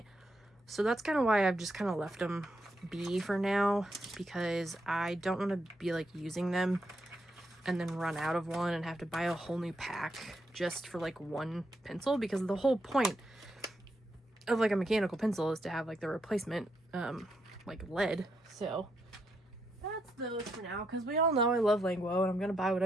So that's kind of why I've just kind of left them be for now, because I don't want to be like using them and then run out of one and have to buy a whole new pack just for like one pencil, because the whole point of like a mechanical pencil is to have like the replacement like lead. So that's those for now, because we all know I love Langwo, and I'm gonna buy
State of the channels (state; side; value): normal; both; correlation 0.80